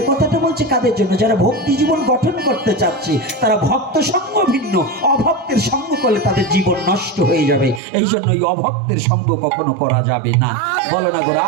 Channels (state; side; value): drops out; left; at 7.8 s